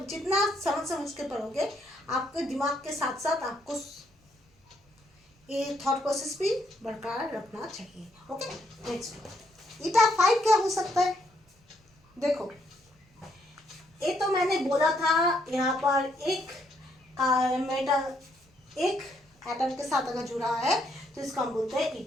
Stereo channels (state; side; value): normal; both; correlation 0.73